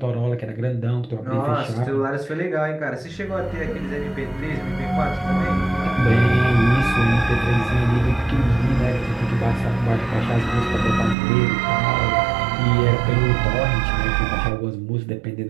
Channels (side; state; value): left; drops out; at 11.2 s